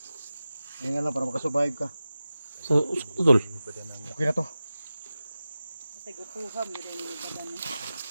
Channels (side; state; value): both; inverted; correlation -0.95